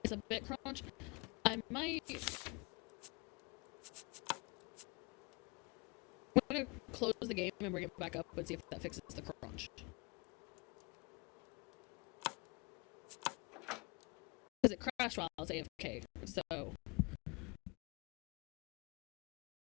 It's a bit crunch. I might. I'm gonna close the game and bring it back up and see if that fixes the crunch. Because it crashed while I was AFK, so.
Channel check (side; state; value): right; quieter; 28.5 dB